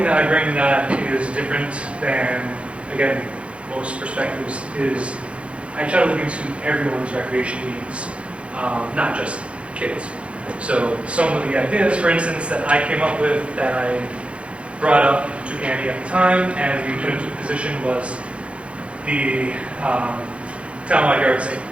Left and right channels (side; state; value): left; late; 0.061 ms